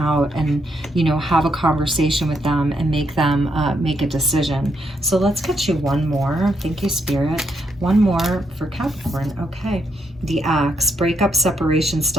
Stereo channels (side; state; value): both; normal; correlation 0.77